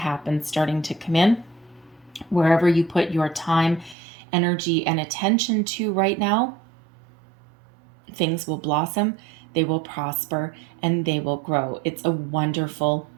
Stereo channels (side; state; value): left; drops out; at 4.0 s